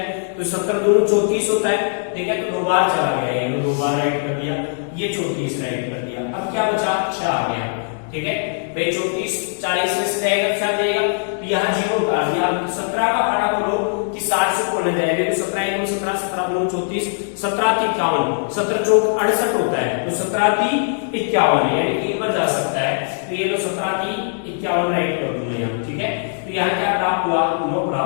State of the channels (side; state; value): right; silent; digital silence